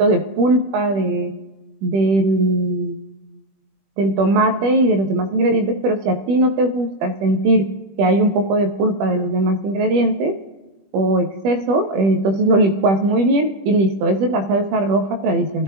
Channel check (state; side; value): late; left; 21 ms